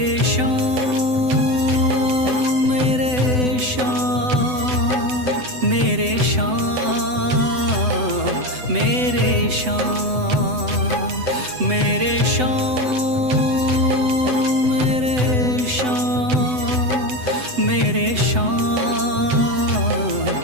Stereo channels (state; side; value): late; left; 7.9 ms